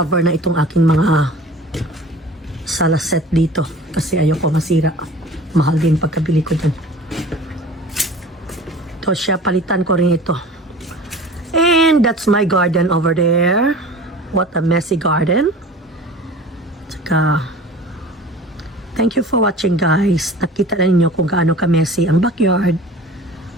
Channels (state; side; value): normal; both; correlation 0.41